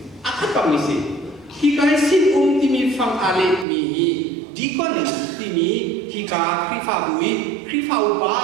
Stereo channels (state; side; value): drops out; left; at 3.7 s